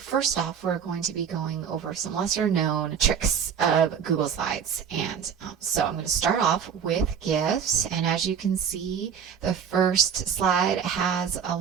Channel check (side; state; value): left; quieter; 7.5 dB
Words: off we're going to be going over some lesser known tricks of Google Slides. And so I'm going to start off with GIFs, and as you can see, the first slide has a